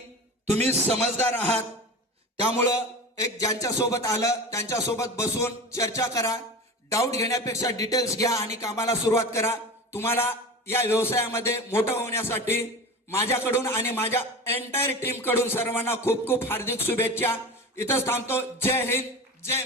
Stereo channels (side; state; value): both; normal; correlation 0.31